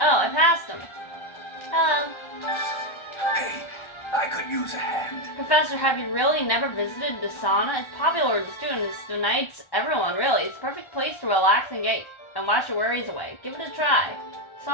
I passed him. Hello. Hey, I could use a hand. Professor, have you really never visited the sauna? It's popular with the students, the knights, everyone really. It's a perfect place to relax and wash your worries away. Give it a try.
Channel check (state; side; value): late; right; 1.3 ms